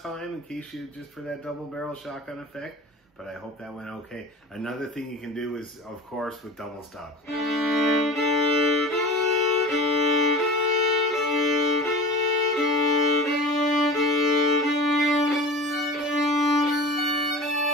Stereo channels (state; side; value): normal; both; correlation 0.35